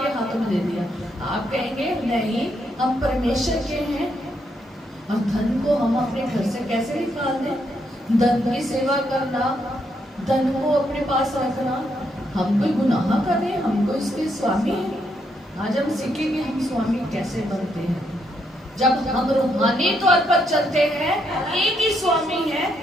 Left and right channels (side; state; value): both; normal; correlation 0.77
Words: हाथों में दे दिया। आप कहेंगे नहीं, हम परमेश्वर के हैं, और धन को हम अपने घर से कैसे निकाल दें? धन की सेवा करना, धन को अपने पास रखना, हम कोई गुनाह कर रहे हैं, हमको इसके स्वामी हैं। आज हम सीखेंगे हम स्वामी कैसे बनते हैं। जब हम रूहानी तौर पर चलते हैं, एक ही स्वामी है